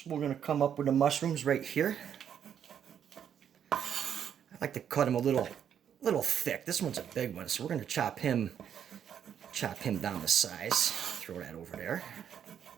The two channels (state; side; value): quieter; left; 8.8 dB